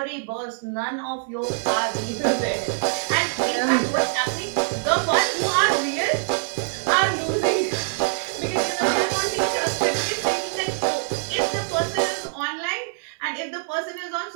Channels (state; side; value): silent; left; digital silence